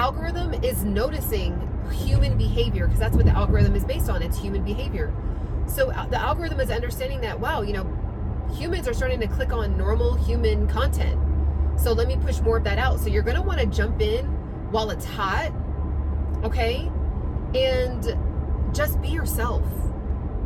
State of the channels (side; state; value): both; identical; correlation 1.00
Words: is noticing human behavior, because that's what the algorithm is based on. It's human behavior. So the algorithm is understanding that, wow, you know, humans are starting to click on normal human content. So let me push more of that out. So you're going to want to jump in while it's hot, okay? And just be yourself.